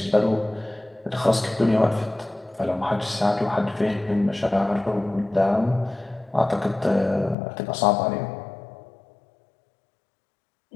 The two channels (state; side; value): drops out; right; at 7.4 s